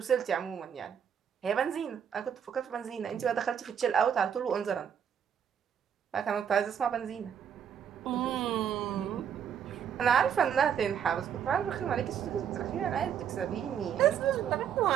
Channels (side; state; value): left; quieter; 8.4 dB